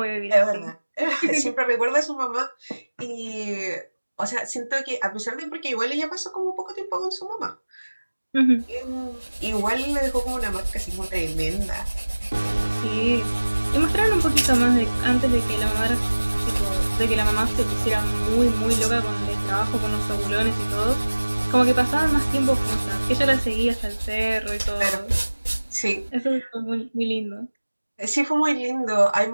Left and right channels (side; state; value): both; inverted; correlation -1.00